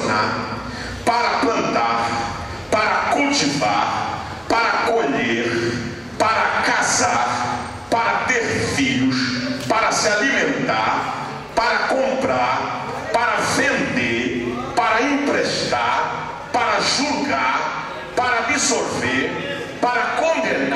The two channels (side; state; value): both; identical; correlation 1.00